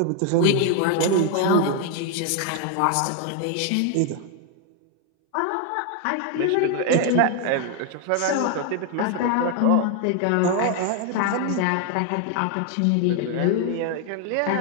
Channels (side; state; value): both; different; correlation 0.01